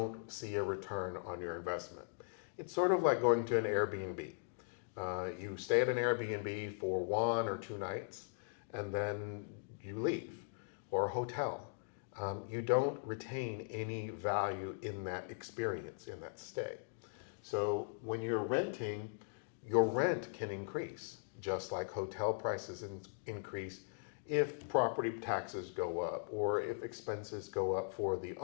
see a return on your investment. It's sort of like going to an Airbnb. You stay at an Airbnb for 1 or 2 nights, and then you leave, or a hotel. You don't retain any value in that experience, in that stay. So when you're renting, your rent can increase, just like hotel prices increase if property taxes go up, or if expenses go up for the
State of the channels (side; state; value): right; silent; digital silence